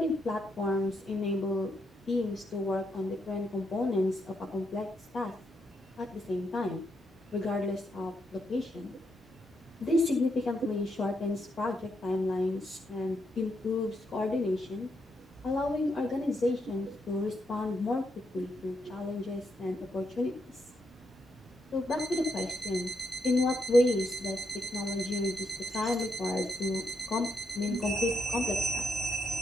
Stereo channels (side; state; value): both; normal; correlation 0.80